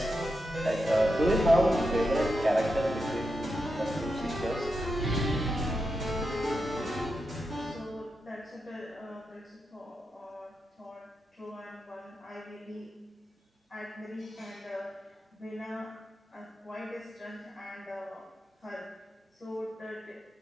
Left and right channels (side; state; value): both; normal; correlation 0.87